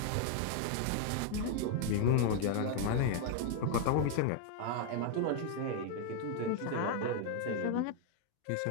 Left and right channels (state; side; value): different; both; correlation 0.00